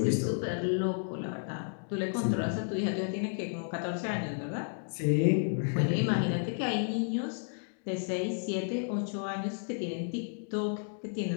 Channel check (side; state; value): right; silent; digital silence